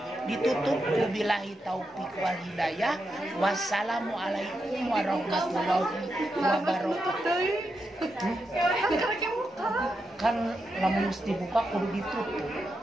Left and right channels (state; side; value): normal; both; correlation 0.85